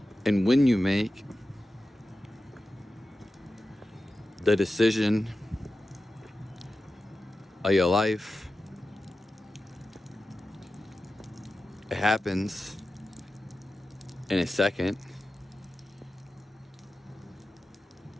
and when you make the decision of your life, it happens in a second.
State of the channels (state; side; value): normal; both; correlation 0.93